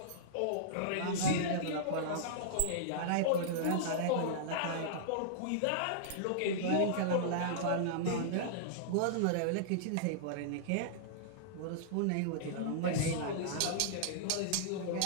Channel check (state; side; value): different; both; correlation -0.02